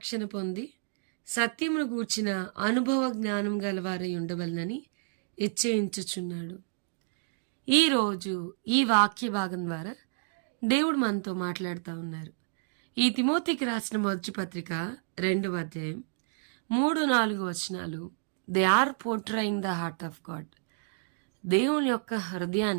పొంది సత్యమును గూర్చిన అనుభవ జ్ఞానం గలవారై ఉండవలనని హెచ్చరించుచున్నాడు. ఈరోజు ఈ వాక్య భాగం ద్వారా దేవుడు మనతో మాట్లాడుతూ ఉన్నారు. ఈ తిమోతికి రాసిన మొదటి పత్రిక 2వ అధ్యాయం 3-4 వచనాలు they are portraying the heart of God. దేవుని యొక్క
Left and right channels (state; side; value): silent; left; digital silence